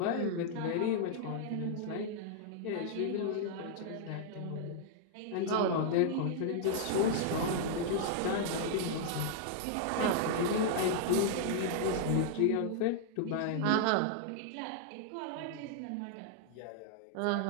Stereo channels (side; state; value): both; different; correlation -0.01